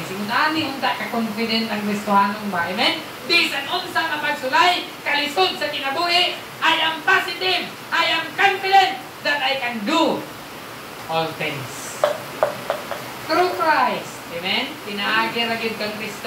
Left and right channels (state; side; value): identical; both; correlation 1.00